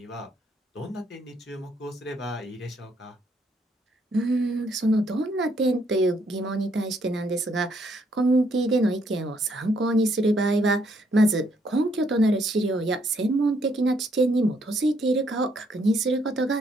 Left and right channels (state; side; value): normal; both; correlation 0.71